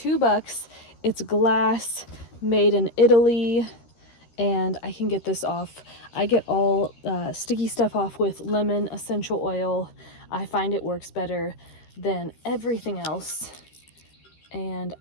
It's glass, made in Italy, and I can get this off. I get all sticky stuff off with lemon essential oil. I find it works better than everything else. And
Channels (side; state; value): right; late; 13 ms